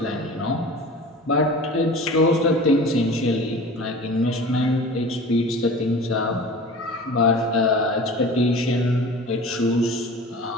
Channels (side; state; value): both; normal; correlation 0.38